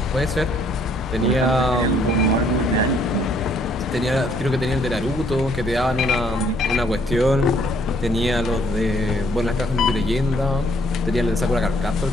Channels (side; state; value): both; normal; correlation 0.65